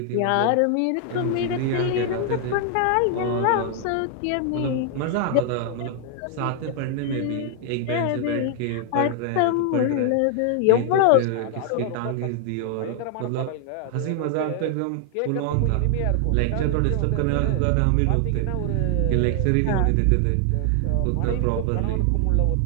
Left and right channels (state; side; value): different; both; correlation 0.00